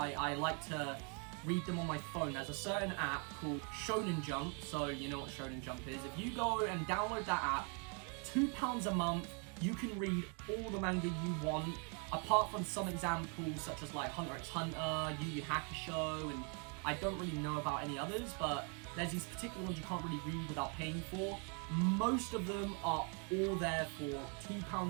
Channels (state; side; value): quieter; left; 37.4 dB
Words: like to read them on my phone. There's a certain app called Shonen Jump, so you know what Shonen Jump is. If you go and download that app, £2 a month, you can read all the manga you want, apart from some examples such as like Hunter x Hunter, Yu Yu Hakusho, and I don't really know about any others, but there's these particular ones you can't really read without paying for. Most of them are all there for